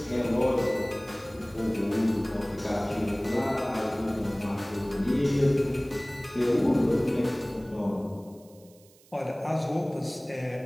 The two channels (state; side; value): noise; right; hiss, 28 dB below the sound